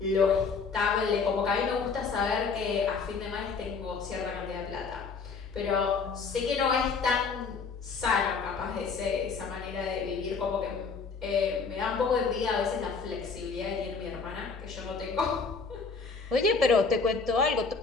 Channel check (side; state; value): right; quieter; 5.0 dB